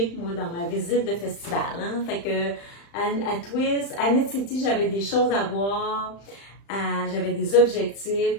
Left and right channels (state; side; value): late; right; 35 ms